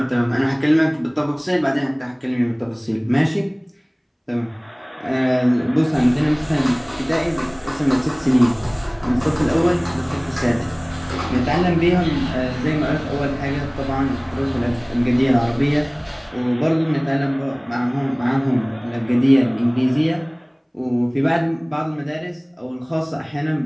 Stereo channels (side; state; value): both; identical; correlation 1.00